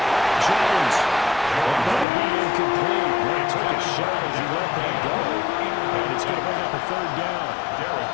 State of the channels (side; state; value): right; drops out; at 2.1 s